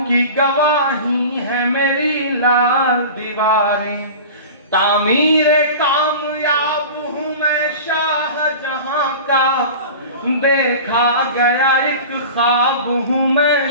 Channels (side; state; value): both; inverted; correlation -0.35